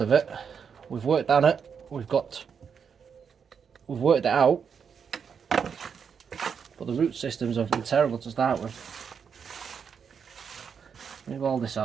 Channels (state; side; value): quieter; left; 6.8 dB